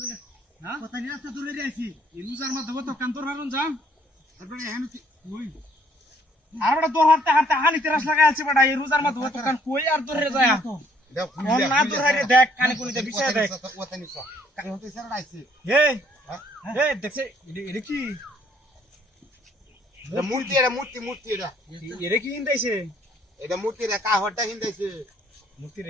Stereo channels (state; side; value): normal; both; correlation 0.65